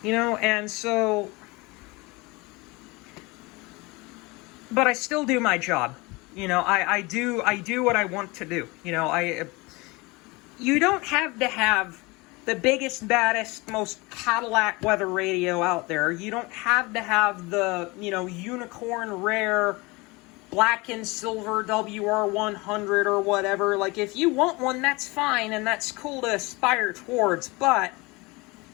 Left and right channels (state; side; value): quieter; right; 24.6 dB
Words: And so, but I still do my job. I do what I want to do. You don't have to have the biggest, baddest, most Cadillac weather radio out there. You don't have to have the, unicorn rare black and silver WR100 or whatever. Like, if you want one, that's fine, and that's cool to aspire towards. But